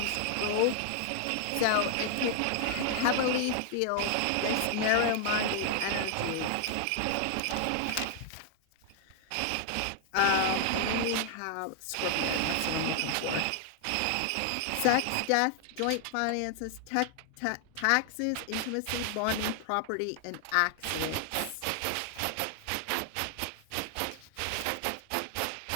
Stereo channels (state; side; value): different; both; correlation 0.00